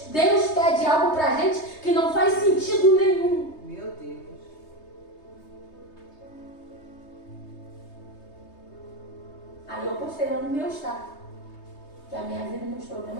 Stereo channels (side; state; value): right; late; 3.2 ms